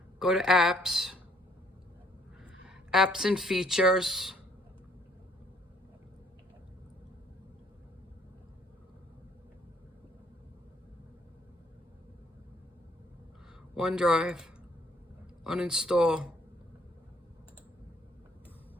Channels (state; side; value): normal; both; correlation 0.64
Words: go to Apps, Apps and Features, OneDrive, uninstall,